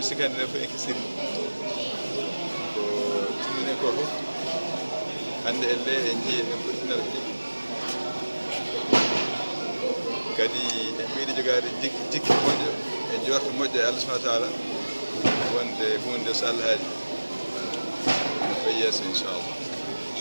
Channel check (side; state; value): both; inverted; correlation -1.00